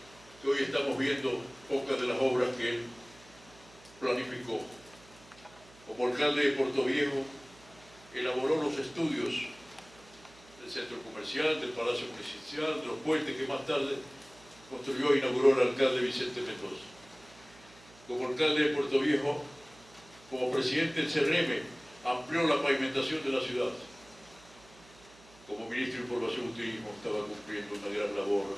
que hoy estamos viendo pocas de las obras que él planificó. Como alcalde de Puerto Viejo, elaboró los estudios del centro comercial, del Palacio Municipal, de los puentes que más tarde construyó e inauguró el alcalde Vicente Mendoza. Como alcalde de Puerto Viejo, como presidente del CRM, amplió la pavimentación de la ciudad. Como ministro de Información y Turismo estaba cumpliendo una gran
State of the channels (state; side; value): noise; right; hum, 24 dB below the sound